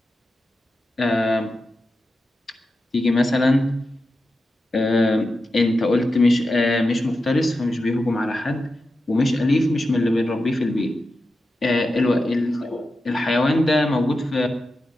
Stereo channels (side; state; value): both; normal; correlation 0.90